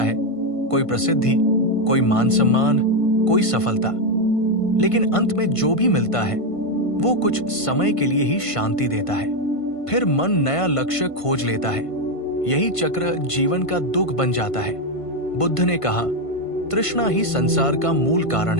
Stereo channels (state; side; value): late; right; 1.5 ms